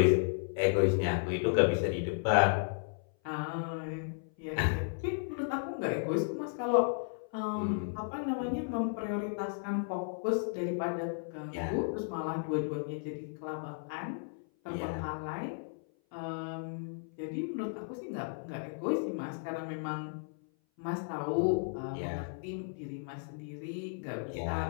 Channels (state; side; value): silent; right; 55 dB below the other